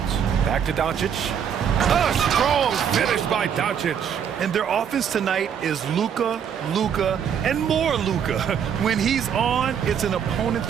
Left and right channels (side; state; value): left; quieter; 8.1 dB